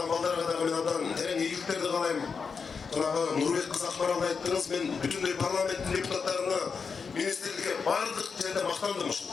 балдарга дагы мен абдан терең ийгиликтерди каалайм. Жанагы Нурбек кыз Акмаралды айттыңыз, мен бүтүндөй парламенттин депутаттарына, министрликке бардык жерде мактандым ушул.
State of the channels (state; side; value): quieter; right; 5.5 dB